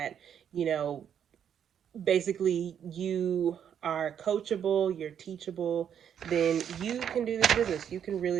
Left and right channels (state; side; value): quieter; left; 8.8 dB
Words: you know, basically you are coachable, you're teachable, then you can do this business. You can